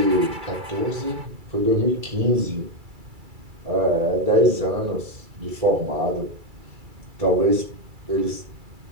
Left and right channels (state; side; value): late; left; 2.3 ms